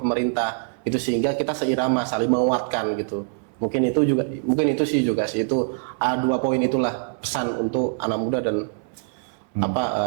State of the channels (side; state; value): left; silent; 63 dB below the other